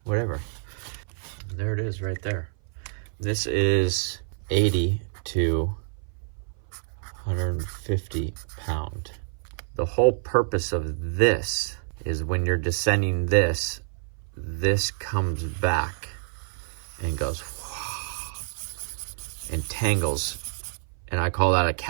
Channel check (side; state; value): left; silent; 57 dB below the other